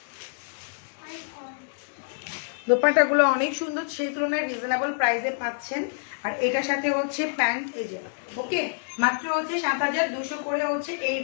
দোপাট্টা গুলো অনেক সুন্দর, সেই তুলনায় রিজনেবল প্রাইসে পাচ্ছেন। আর এটার সাথে হচ্ছে প্যান্ট, এই যে ওকে, মাত্র হচ্ছে 7,200 করে হচ্ছে এই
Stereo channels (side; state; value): right; silent; digital silence